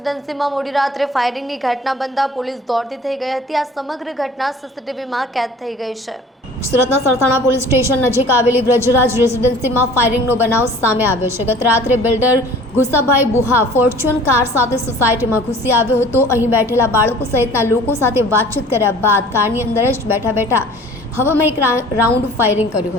મોડી રાત્રે ફાયરિંગની ઘટના બનતા પોલીસ દોડતી થઈ ગઈ હતી। આ સમગ્ર ઘટના સીસીટીવીમાં કેદ થઈ ગઈ છે। સુરતના સરથાણા પોલીસ સ્ટેશન નજીક આવેલી બ્રજરાજ રેસિડેન્સીમાં ફાયરિંગનો બનાવ સામે આવ્યો છે। ગત રાત્રે બિલ્ડર ગુસાભાઈ બુહા ફોર્ચ્યુન કાર સાથે સોસાયટીમાં ઘૂસી આવ્યો હતો। અહીં બેઠેલા બાળકો સહિતના લોકો સાથે વાતચીત કર્યા બાદ કારની અંદર જ બેઠા હવામાં એક રાઉન્ડ ફાયરિંગ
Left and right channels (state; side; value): normal; both; correlation 0.47